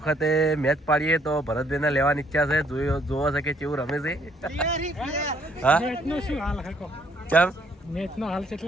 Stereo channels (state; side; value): normal; both; correlation 0.66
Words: મેચ પાડીએ તો ભરતભાઈને લેવાની ઈચ્છા છે. જોવો છે કે કેવું રમે છે. હા કેમ મેચનો હાલ